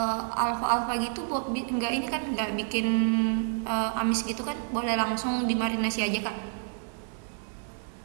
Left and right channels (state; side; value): silent; left; 59 dB below the other